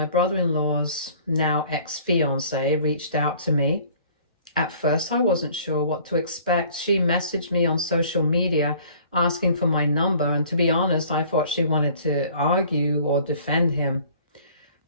brother-in-law's now ex-fiancée reached out to me. At first, I wasn't sure what to expect. She messaged me on social media asking for my number, and to be honest, I thought she wanted to argue or defend him.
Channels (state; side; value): inverted; both; correlation -0.52